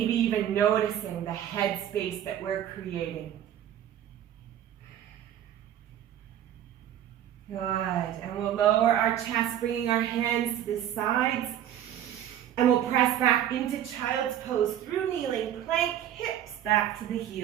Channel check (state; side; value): quieter; left; 10.9 dB